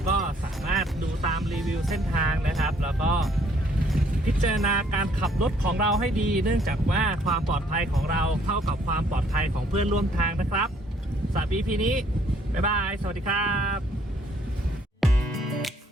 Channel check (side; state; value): both; normal; correlation 0.64